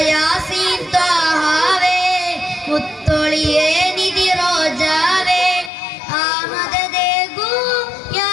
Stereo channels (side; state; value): right; drops out; at 5.7 s